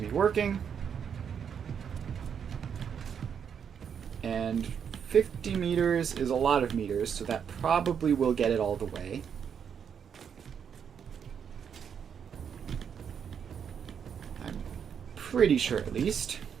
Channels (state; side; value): quieter; left; 7.5 dB